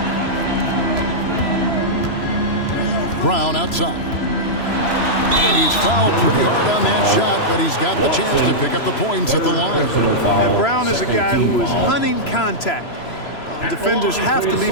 Brown outside. And he's fouled pretty hard on that shot, but he's got the chance to pick up the points at the line. And Brown is a guy who is hunting contact. Defenders have to be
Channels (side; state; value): right; late; 3.0 ms